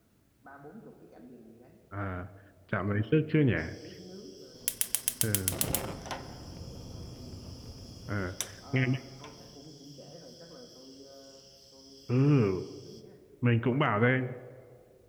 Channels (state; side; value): identical; both; correlation 1.00